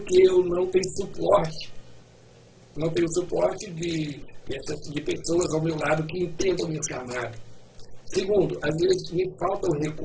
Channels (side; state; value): both; identical; correlation 1.00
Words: eu não tenho suporte. Não tenho suporte de pessoas ao meu lado que entendam o meu chamado. Segundo, às vezes me falta o